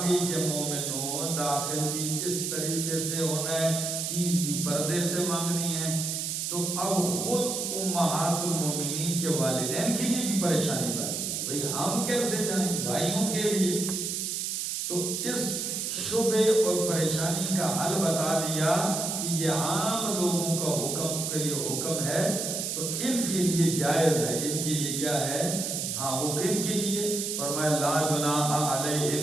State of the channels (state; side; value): noise; right; hiss, 2 dB below the sound